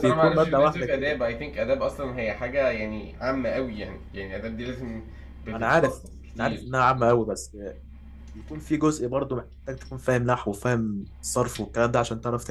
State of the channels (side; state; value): both; identical; correlation 1.00